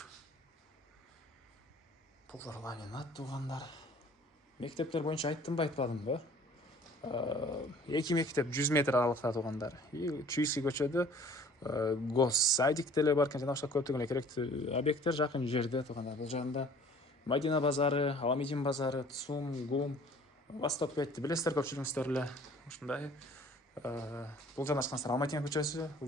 Полдор ламинат туғандар. Мектептер боюнча айттымбы, айтпадымбы? 2 мектеп 100 метр аралыкта туғандар. Чуйский көчөдө госсадик деле бар экен, жана башка көптөгөн эле керектүү объекттер жакын жерде туғандар. Бул жагында Мадина базары, Аламедин базары, ЦУМ, ГУМ, Восток 5-ти билесиздер көпчүлүгүңүздөр эле. Ушундай Бұл жанашқансыздар Алматина көшесі,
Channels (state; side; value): normal; both; correlation 0.51